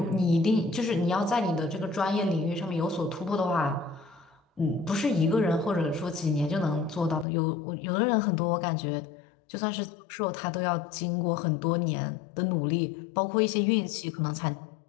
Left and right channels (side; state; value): right; drops out; at 7.2 s